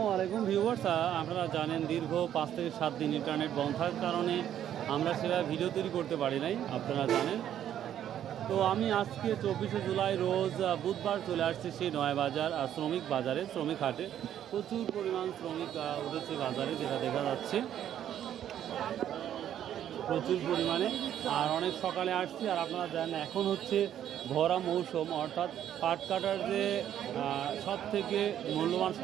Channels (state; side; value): quieter; left; 10.6 dB